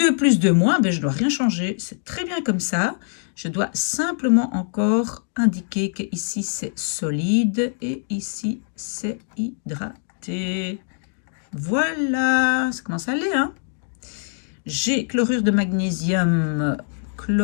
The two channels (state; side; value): silent; right; digital silence